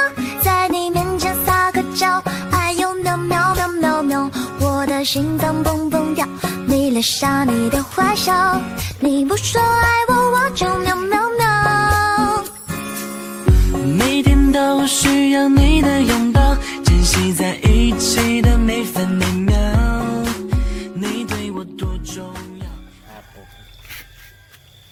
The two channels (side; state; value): both; identical; correlation 1.00